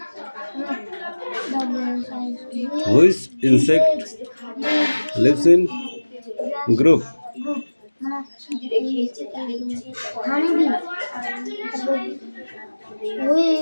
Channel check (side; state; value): both; inverted; correlation -1.00